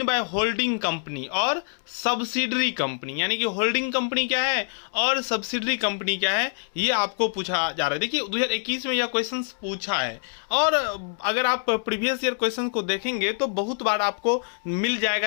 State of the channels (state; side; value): silent; right; 61 dB below the other